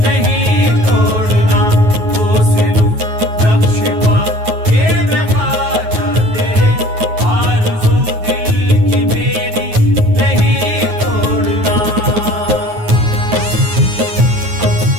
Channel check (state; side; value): late; left; 9.4 ms